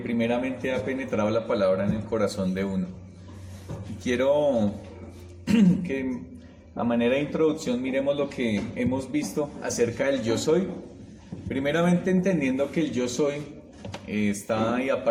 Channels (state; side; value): identical; both; correlation 1.00